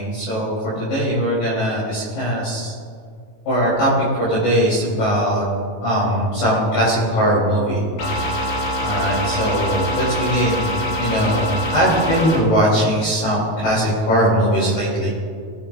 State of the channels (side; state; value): right; late; 19 ms